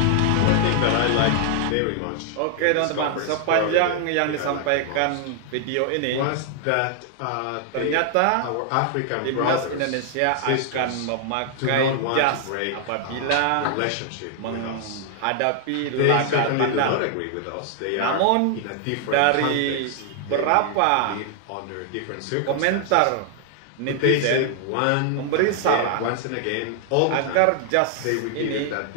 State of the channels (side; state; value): both; different; correlation 0.00